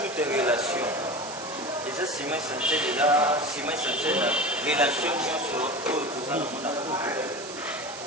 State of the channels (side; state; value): right; noise; hiss, 12 dB below the sound